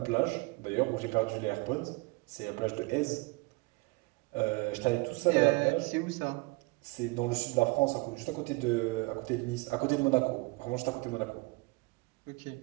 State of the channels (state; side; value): quieter; left; 25.7 dB